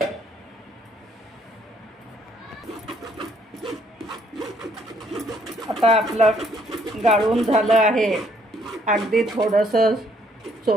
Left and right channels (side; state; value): both; normal; correlation 0.66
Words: आता आपलं गाळून झालं आहे। अगदी थोडंसं